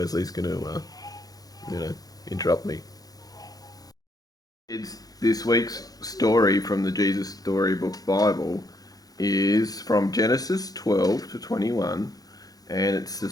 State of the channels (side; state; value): right; late; 0.18 ms